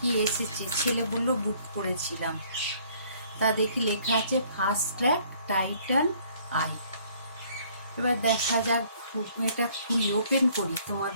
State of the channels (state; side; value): inverted; both; correlation -0.60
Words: এসেছে। ছেলে বললো বুক করেছিলাম, তা দেখি লেখা আছে ফাস্ট ট্র্যাক টাইটান আই। এবার দেখা যাক, এটা খুলি, ওপেন করি,